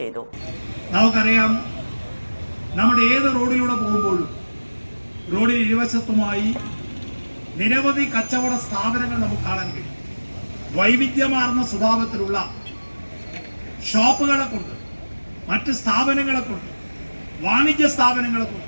നമുക്കറിയാം, നമ്മുടെ ഏത് റോഡിലൂടെ പോകുമ്പോഴും റോഡിൽ ഇരുവശത്തുമായി നിരവധി കച്ചവട സ്ഥാപനങ്ങൾ നമുക്ക് കാണാൻ കഴിയും. വൈവിധ്യമാർന്ന സ്വഭാവത്തിലുള്ള ഷോപ്പുകളെ കൊണ്ട്, മറ്റ് സ്ഥാപനങ്ങളെ കൊണ്ട്, വാണിജ്യ സ്ഥാപനങ്ങളെ കൊണ്ട്,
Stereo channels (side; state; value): both; inverted; correlation -1.00